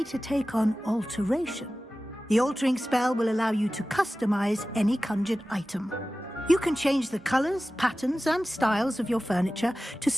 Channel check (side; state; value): both; normal; correlation 0.96